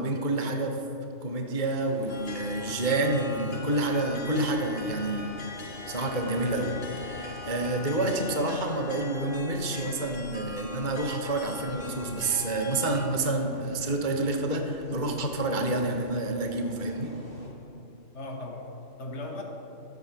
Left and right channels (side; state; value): right; late; 2.3 ms